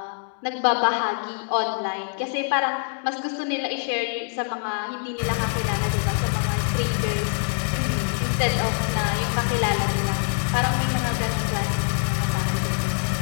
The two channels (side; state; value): right; silent; digital silence